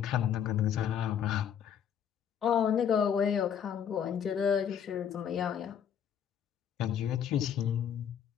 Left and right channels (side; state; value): right; quieter; 8.5 dB